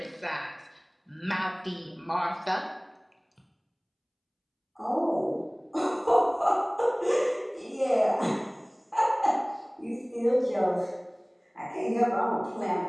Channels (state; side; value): identical; both; correlation 1.00